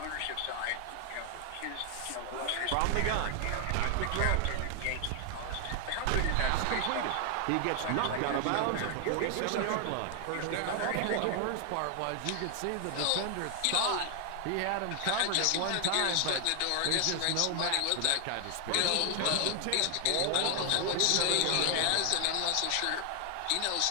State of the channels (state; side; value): different; both; correlation 0.00